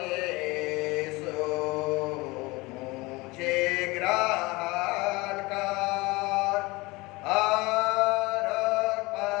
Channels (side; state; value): right; quieter; 23.1 dB